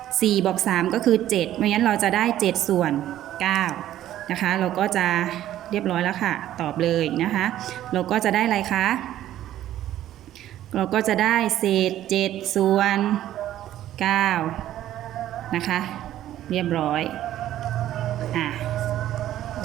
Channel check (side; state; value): left; quieter; 12.7 dB